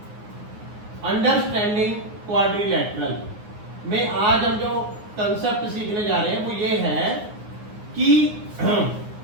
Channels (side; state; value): left; late; 9.5 ms